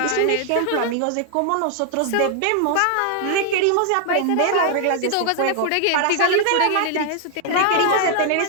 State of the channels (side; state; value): both; different; correlation 0.00